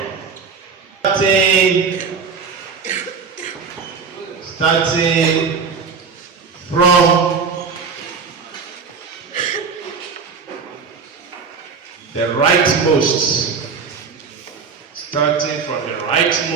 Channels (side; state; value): left; quieter; 5.5 dB